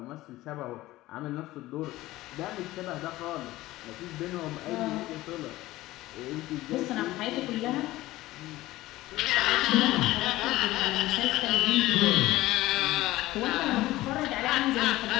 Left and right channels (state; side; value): quieter; right; 17.2 dB